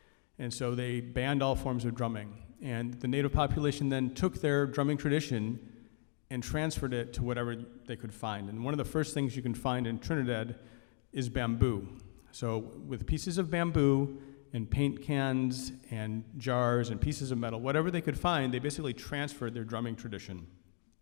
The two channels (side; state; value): right; silent; 54 dB below the other